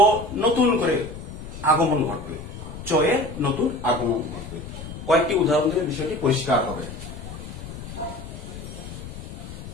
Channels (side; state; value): left; noise; rumble, 11 dB below the sound